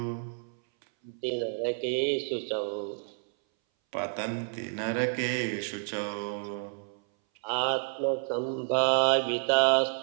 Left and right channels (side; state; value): left; silent; 58 dB below the other